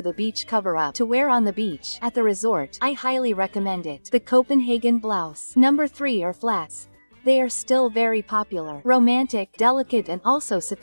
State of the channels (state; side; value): inverted; both; correlation -1.00